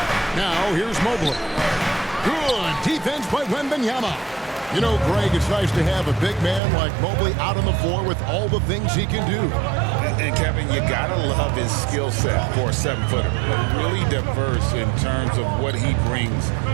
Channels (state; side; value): drops out; left; at 6.6 s